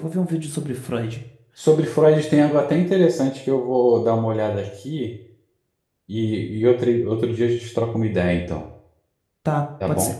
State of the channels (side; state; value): both; identical; correlation 1.00